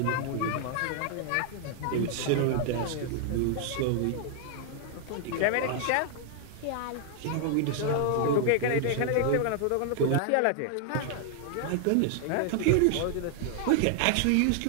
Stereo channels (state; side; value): different; both; correlation 0.00